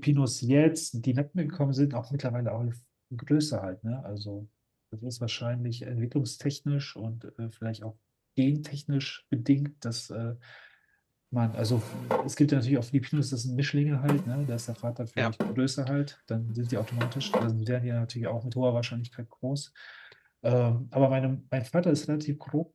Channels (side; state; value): both; identical; correlation 1.00